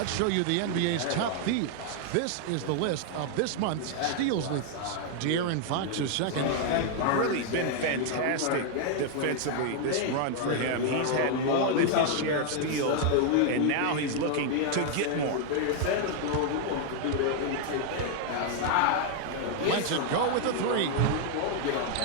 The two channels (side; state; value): both; different; correlation 0.00